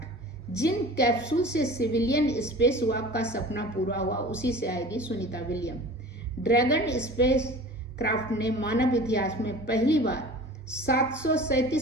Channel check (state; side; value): normal; both; correlation 0.40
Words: जिन कैप्सूल से सिविलियन स्पेस वॉक का सपना पूरा हुआ उसी से आएगी Sunita William. Dragon spacecraft ने मानव इतिहास में पहली बार